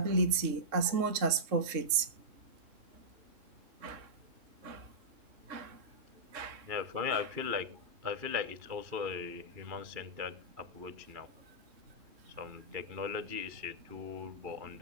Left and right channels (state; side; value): late; left; 3.6 ms